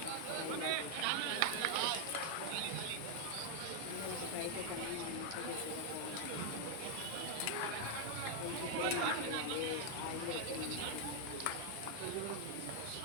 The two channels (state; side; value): different; both; correlation 0.00